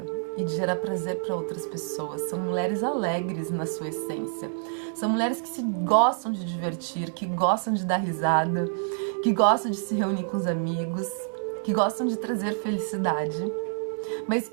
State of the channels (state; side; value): silent; left; 60 dB below the other